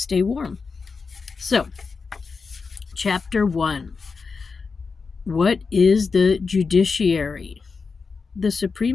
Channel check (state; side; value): quieter; right; 4.8 dB